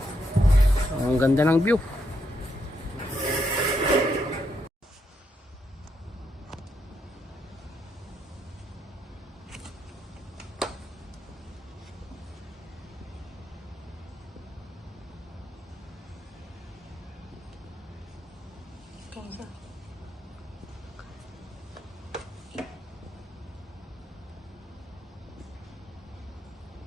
So, ang ganda ng view.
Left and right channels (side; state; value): both; normal; correlation 0.79